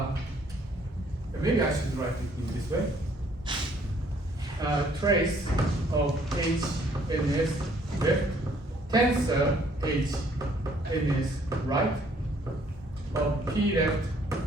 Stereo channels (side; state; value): both; normal; correlation 0.63